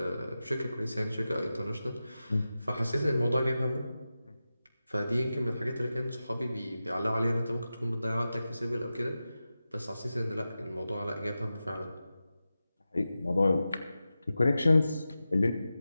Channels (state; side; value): inverted; both; correlation -0.93